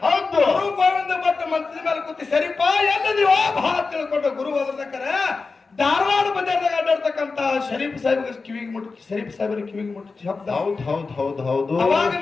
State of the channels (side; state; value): right; quieter; 4.2 dB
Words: ಹೌದು ಗುರು ಗೋವಿಂದ ಭಟ್ ಮಂತ್ರಿ ಮೇಲೆ ಕೂತಿ ಸರಿಪ ಎಲ್ಲ ನೀವು ಭಾವ ತಿಳ್ಕೊಂಡು ಗುರು ಹೋದ್ರೆ ಧಾರವಾಡ ಬಜಾರ್ದಾಗ ಅಡ್ಡಾಡ್ತಕ್ಕಂತ ಶರೀಫ್ ಸಾಹೇಬ್ಗೆ ಕಿವಿಗೆ ಮುಟ್ಟಿ ಶರೀಫ್ ಸಾಹೇಬ್ರ ಕಿವಿಗೆ ಮುಟ್ಟಿ ಶಬ್ದ ಹೌದು ಅವಾಗ